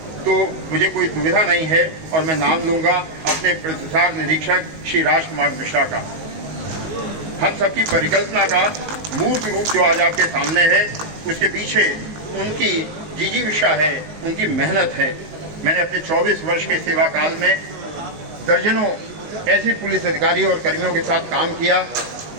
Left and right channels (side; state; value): left; late; 19 ms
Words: तो मुझे कोई दुविधा नहीं है, और मैं नाम लूंगा अपने प्रसार निरीक्षक श्री राजकुमार मिश्रा का। हम सबकी परिकल्पना का मूर्त रूप जो आज आपके सामने है, उसके पीछे उनकी जिजीविषा है, उनकी मेहनत है। मैंने अपने 24 वर्ष के सेवा काल में दर्जनों ऐसे पुलिस अधिकारियों और कर्मियों के साथ काम किया